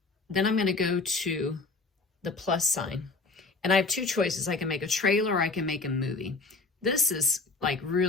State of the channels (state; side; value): quieter; right; 3.7 dB